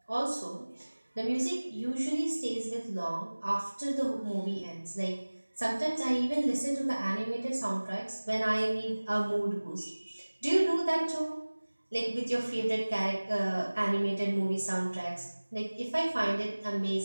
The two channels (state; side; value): inverted; both; correlation -1.00